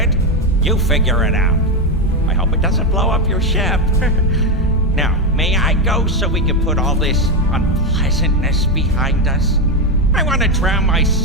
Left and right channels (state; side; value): normal; both; correlation 0.09